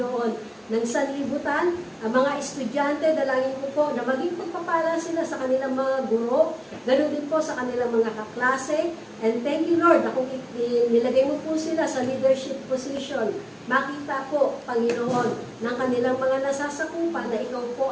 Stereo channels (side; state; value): both; identical; correlation 1.00